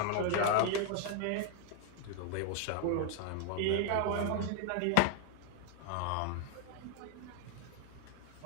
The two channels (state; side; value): different; both; correlation 0.00